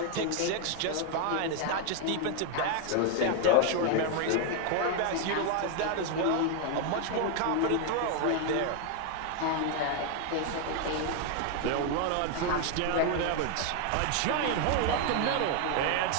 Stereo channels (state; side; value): different; both; correlation 0.00